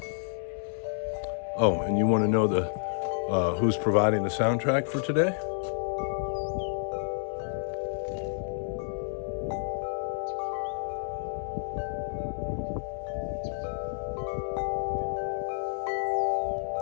Oh, and you want to know who's providing the soundtrack for today?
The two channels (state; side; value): silent; right; 58 dB below the other